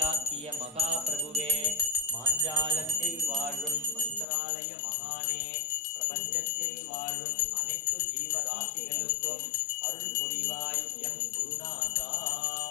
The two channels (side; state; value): right; drops out; at 4.2 s